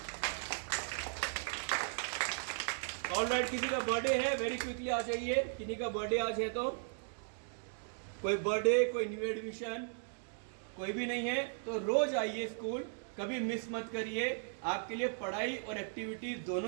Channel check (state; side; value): silent; left; digital silence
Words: ऑलराइट, किसी का बर्थडे है वेरी क्विकली आ जाइए। किसी का बर्थडे आज है तो कोई बर्थडे, कोई न्यू एडमिशन, कोई भी नहीं है तो रोज आइए स्कूल, कभी मिस मत करिए। आपके लिए पढ़ाई और एक्टिविटीज